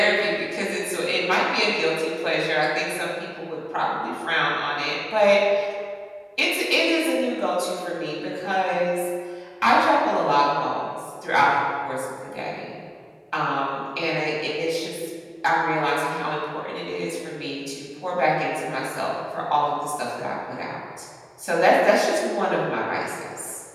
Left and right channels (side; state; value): both; identical; correlation 1.00